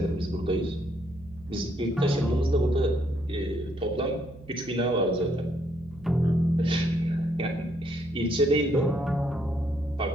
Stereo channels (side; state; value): right; noise; hum, 20 dB below the sound